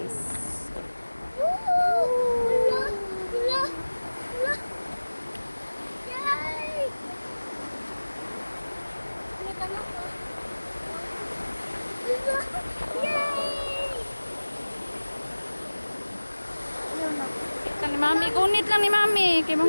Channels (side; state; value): both; inverted; correlation -1.00